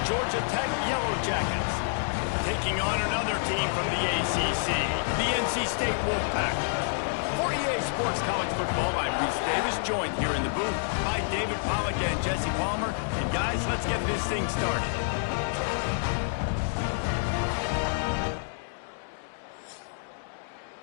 Georgia Tech Yellow Jackets, taking on another team from the ACC, the NC State Wolfpack. For EA Sports College Football, I'm Reese Davis, joined here in the booth by David Pollack and Jesse Palmer. And guys, let's get this thing started.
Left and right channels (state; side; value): silent; right; digital silence